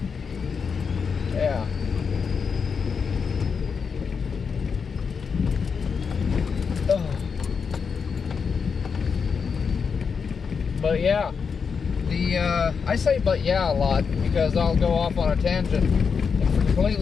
Yeah. Ugh. But yeah, I say but yeah a lot because I'll go off on a tangent and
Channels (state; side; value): quieter; right; 5.9 dB